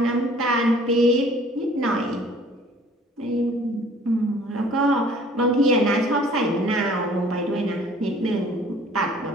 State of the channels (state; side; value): normal; both; correlation 0.53